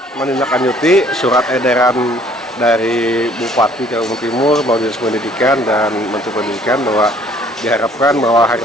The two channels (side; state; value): both; normal; correlation 0.58